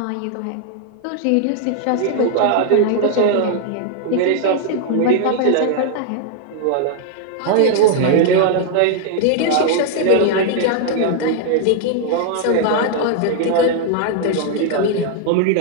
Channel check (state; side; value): different; both; correlation -0.01